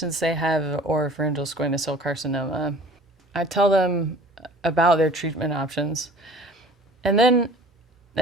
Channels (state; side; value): normal; both; correlation 0.47